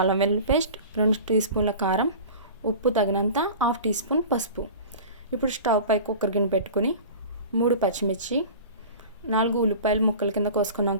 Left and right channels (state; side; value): inverted; both; correlation -0.37